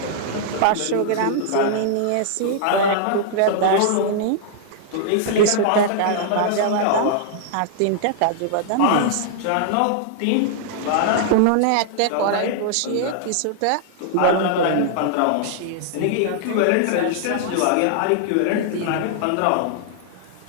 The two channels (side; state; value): both; different; correlation -0.01